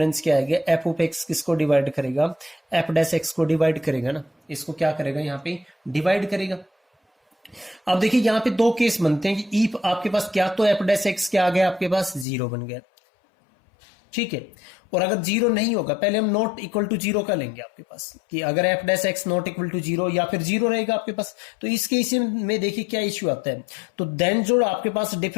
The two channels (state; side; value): drops out; right; at 12.2 s